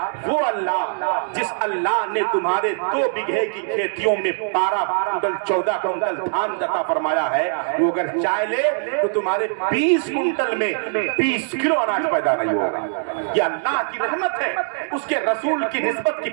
وہ اللہ جس اللہ نے تمہارے 2 بیگھے کی کھیتیوں میں 12 کنٹل 14 کنٹل دھان عطا فرمایا ہے، وہ اگر چاہ لے تو تمہارے 20 کنٹل میں 20 کلو اناج پیدا نہیں ہوگا۔ یہ اللہ کی رحمت ہے، اس کے رسول کی نسبت کی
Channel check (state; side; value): silent; left; digital silence